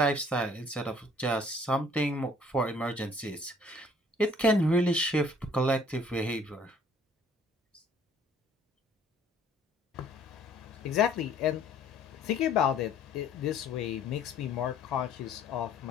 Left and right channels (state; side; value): normal; both; correlation 0.57